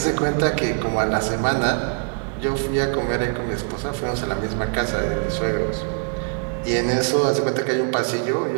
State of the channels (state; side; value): quieter; left; 39.6 dB